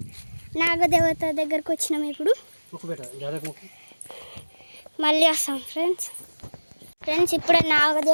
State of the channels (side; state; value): both; inverted; correlation -1.00